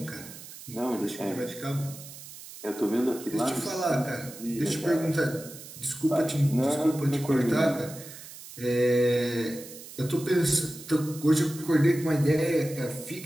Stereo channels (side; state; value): right; noise; hiss, 15 dB below the sound